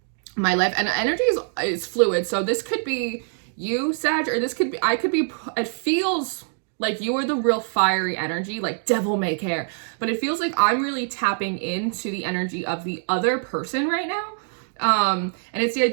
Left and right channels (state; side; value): silent; left; digital silence